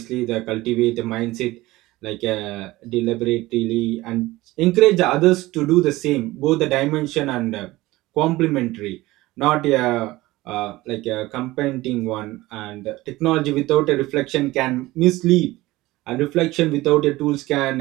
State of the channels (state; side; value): quieter; left; 18.8 dB